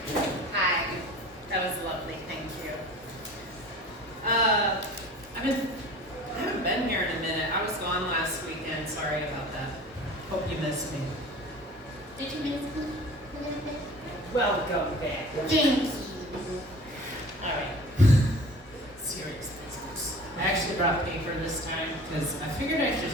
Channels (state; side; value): normal; both; correlation 0.42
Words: Hi. That was lovely. Thank you. I haven't been here in a minute. I was gone last weekend. Sorry about that. Hope you missed me. Did you miss me a little bit? Welcome back. Thank you. All right. Serious business. I actually brought paper this time because I figured I